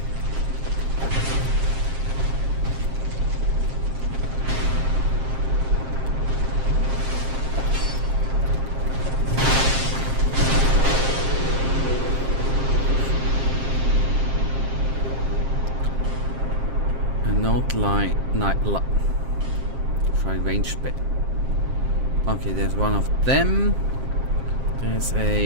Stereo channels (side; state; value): left; late; 7.5 ms